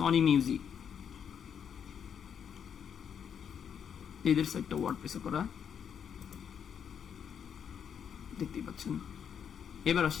মিউজিক, এদের সাইটটা ওয়ার্ডপ্রেসে করা, দেখতেই পাচ্ছেন। এবার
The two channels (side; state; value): right; quieter; 7.9 dB